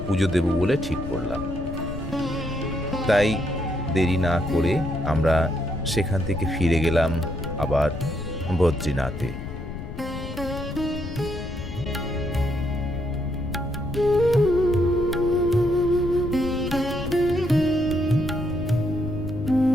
পুজো দেব বলে ঠিক করলাম। তাই দেরি না করে আমরা সেখান থেকে ফিরে গেলাম আবার বদ্রীনাথে।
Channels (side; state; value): left; noise; rumble, 8 dB below the sound